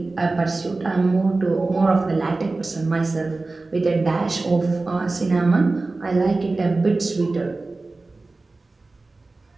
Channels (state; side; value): quieter; left; 3.4 dB